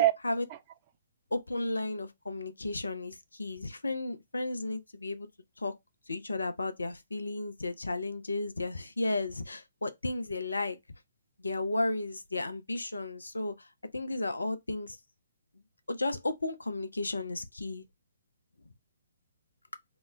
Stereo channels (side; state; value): both; inverted; correlation -0.78